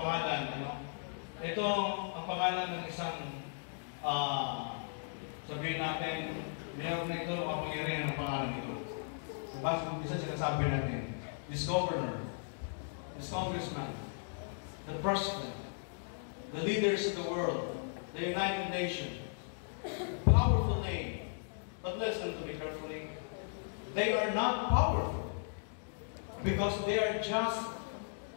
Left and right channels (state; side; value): silent; right; digital silence